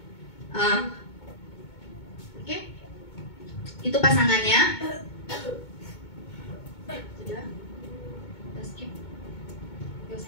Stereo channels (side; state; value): right; late; 2.2 ms